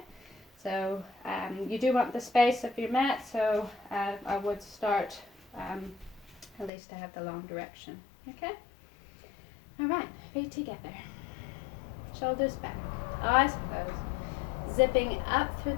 so you do want the space of your mat, so I would start at least to have the long direction. Okay, all right, feet together, shoulders back, eyes closed, zipping up through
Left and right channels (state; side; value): drops out; right; at 6.7 s